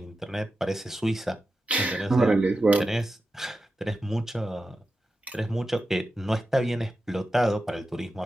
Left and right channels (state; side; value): normal; both; correlation 0.91